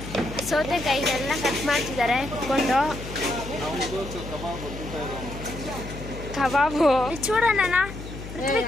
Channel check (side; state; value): left; noise; hum, 11 dB below the sound